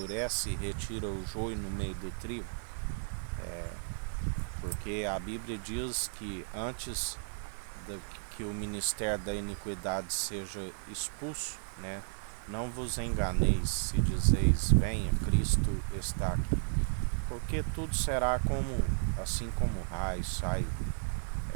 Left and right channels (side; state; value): left; silent; digital silence